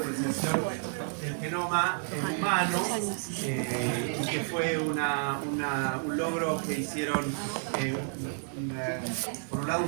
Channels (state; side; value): silent; left; 57 dB below the other